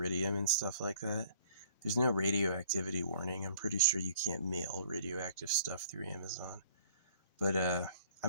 and stuff like that? There's no radioactivity warning. I'm pretty sure you can't mail radioactive stuff through Amazon. But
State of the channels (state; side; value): inverted; both; correlation -0.54